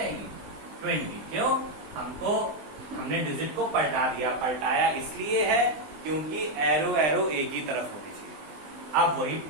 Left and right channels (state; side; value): late; left; 20 ms